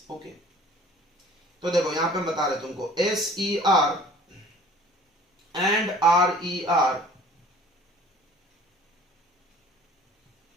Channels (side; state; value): both; normal; correlation 0.49